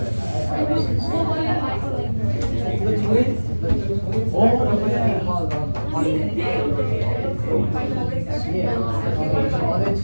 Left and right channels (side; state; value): both; inverted; correlation -1.00